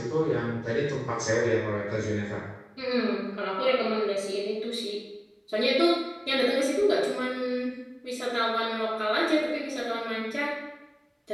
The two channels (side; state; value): both; identical; correlation 1.00